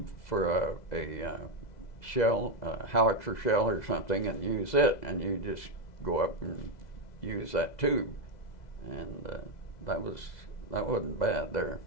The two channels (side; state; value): right; late; 2.0 ms